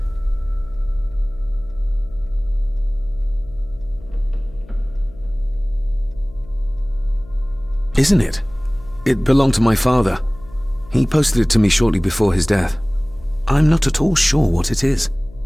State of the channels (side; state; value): left; noise; hum, 21 dB below the sound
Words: Isn't it? It belonged to my father. He posted it to me shortly before his death. I'm not at all sure what it is.